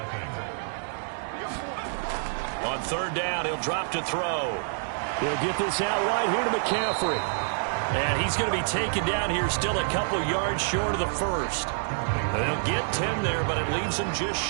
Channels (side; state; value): left; silent; digital silence